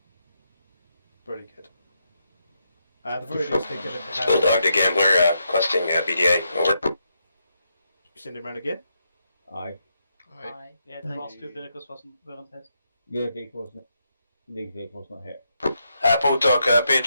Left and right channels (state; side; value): inverted; both; correlation -0.81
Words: Pretty good. The very least thing that Bulldog to Gambler, requesting BDA. Over. send him around again. Aye. Aye. Yeah, the last two vehicles weren't hit. Your vehicle's not. League vehicle's not hit. Bulldog, be